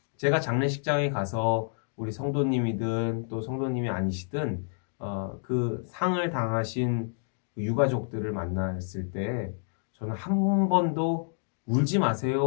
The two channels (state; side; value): silent; right; digital silence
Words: 제가 장례식장에 가서 우리 성도님이든 또 성도님이 아니시든 그 상을 당하신 유가족들을 만났을 때 저는 한 번도 울지